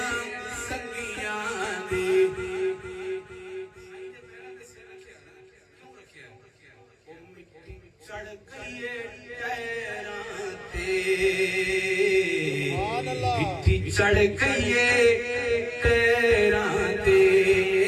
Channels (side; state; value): both; identical; correlation 1.00